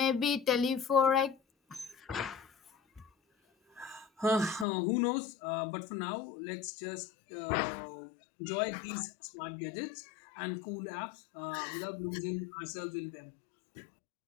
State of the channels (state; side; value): drops out; right; at 4.7 s